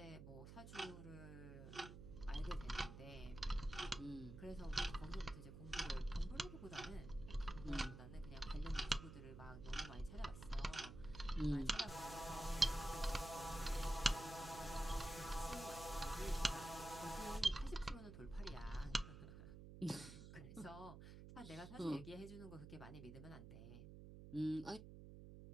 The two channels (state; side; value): noise; right; hum, 12 dB below the sound